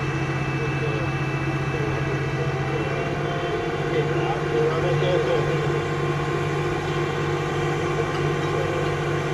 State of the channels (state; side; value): identical; both; correlation 1.00